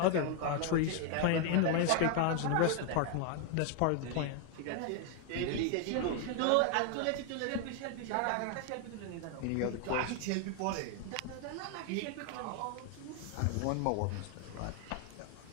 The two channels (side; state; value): both; different; correlation 0.00